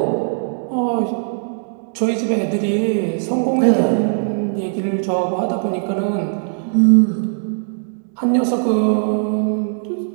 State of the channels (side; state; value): left; silent; digital silence